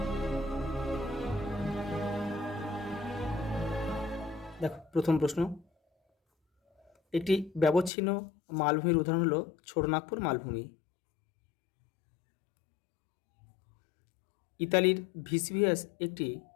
দেখো, প্রথম প্রশ্ন, একটি ব্যবচ্ছিন্ন মালভূমির উদাহরণ হলো ছোটনাগপুর মালভূমি। ইতালির ভিসভিয়াস একটি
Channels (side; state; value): right; drops out; at 7.9 s